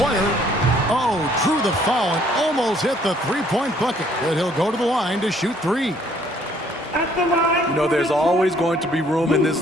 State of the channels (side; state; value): both; normal; correlation 0.63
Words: Oh, drew the foul and almost hit the three-point bucket, but he'll go to the line to shoot three. You know, there's always going to be room in